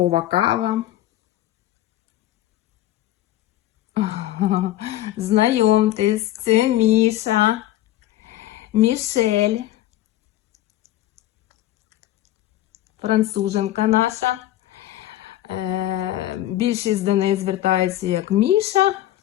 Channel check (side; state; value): right; quieter; 14.3 dB